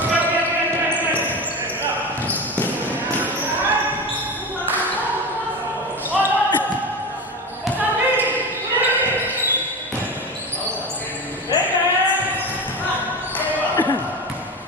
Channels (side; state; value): both; normal; correlation 0.25